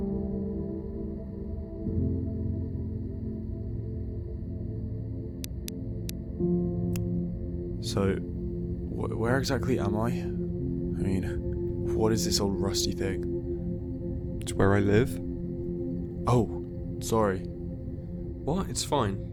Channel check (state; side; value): identical; both; correlation 1.00